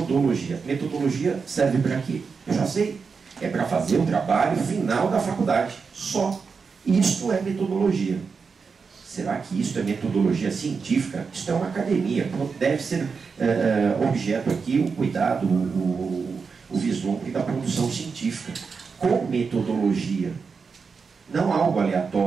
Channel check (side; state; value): left; quieter; 5.3 dB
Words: Metodologia serve para quê? Eu já sei. É para fazer o trabalho final da faculdade. Só. Isto é metodologia. Será que isso é metodologia científica? Isto é uma academia. Deve ser objeto aqui o cuidado, o vislumbre da produção científica. Com metodologia. Não algo